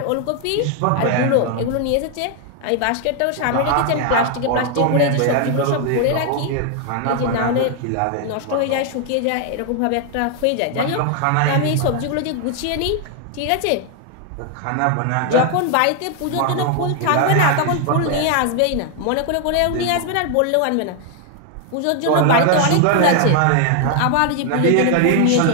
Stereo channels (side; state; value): both; different; correlation 0.00